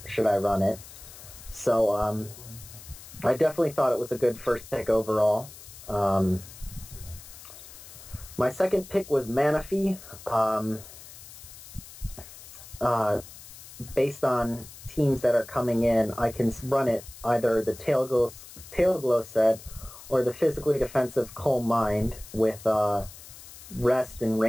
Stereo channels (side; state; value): left; noise; hiss, 17 dB below the sound